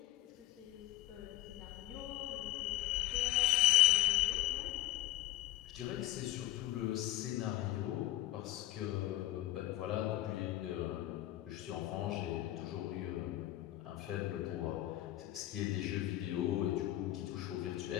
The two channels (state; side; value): quieter; right; 16.1 dB